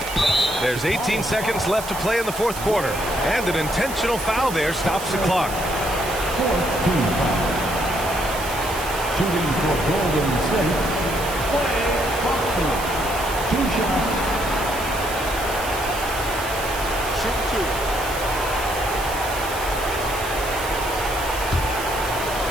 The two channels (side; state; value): right; noise; hiss, 10 dB below the sound